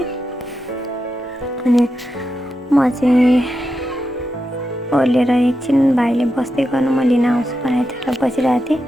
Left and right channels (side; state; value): both; normal; correlation 0.87